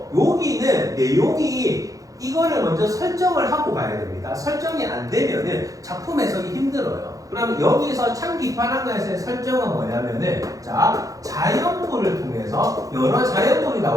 여기는 내용이 이거를 먼저 설정을 하고 가야 됩니다. 설정이 안 되면은 작품 해석이 힘들어요. 그럼 여기서 참기파랑가에서의 설정은 뭐냐면은 자, 자연물을 통해서 여러 자연물이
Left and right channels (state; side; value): late; left; 0.17 ms